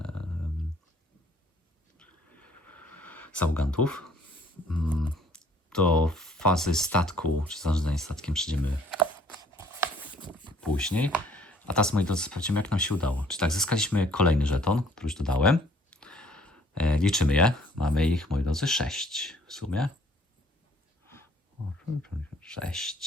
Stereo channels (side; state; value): both; normal; correlation 0.59